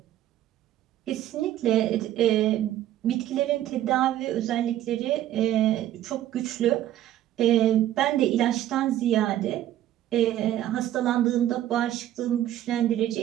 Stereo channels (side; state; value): left; quieter; 12.7 dB